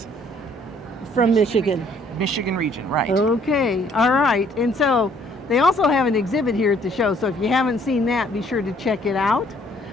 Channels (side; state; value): both; normal; correlation 0.62